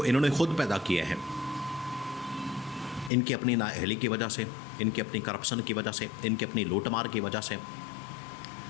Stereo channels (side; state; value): right; drops out; at 3.1 s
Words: انہوں نے خود پیدا کیے ہیں، ان کی اپنی نااہلی کی وجہ سے، ان کی اپنی کرپشن کی وجہ سے، ان کی اپنی لوٹ مار کی وجہ سے،